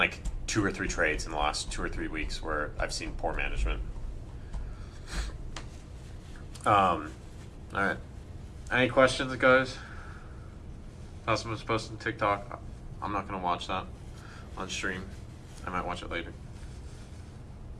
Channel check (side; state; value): both; identical; correlation 1.00